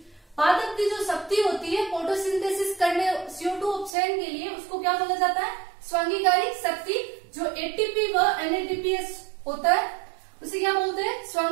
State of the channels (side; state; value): left; drops out; at 4.0 s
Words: पादप की जो शक्ति होती है फोटोसिंथेसिस करने CO2 उपचयन के लिए, उसको क्या बोला जाता है, स्वांगीकारी शक्ति। जो ATP व NADPH होता है उसे क्या बोलते हैं,